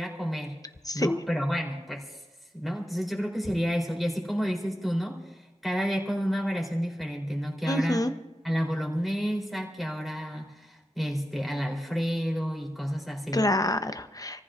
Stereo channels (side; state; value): both; normal; correlation 0.88